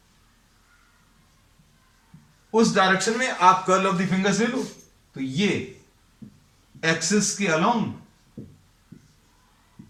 उस डायरेक्शन में आप कर्ल ऑफ द फिंगर्स ले लो, तो ये एक्सिस के अलोंग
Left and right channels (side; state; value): both; identical; correlation 1.00